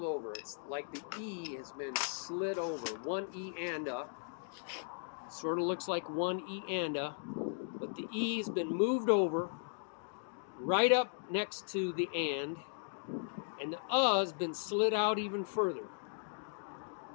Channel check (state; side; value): silent; right; digital silence